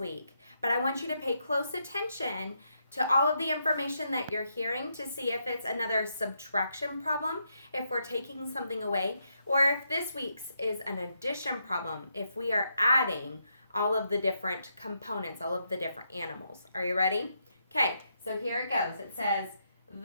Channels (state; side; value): inverted; both; correlation -0.79